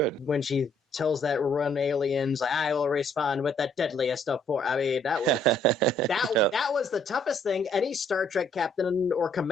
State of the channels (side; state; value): both; normal; correlation 0.66